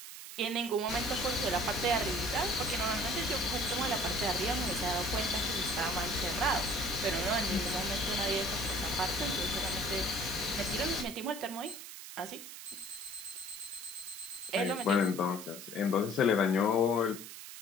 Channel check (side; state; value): right; noise; hiss, 12 dB below the sound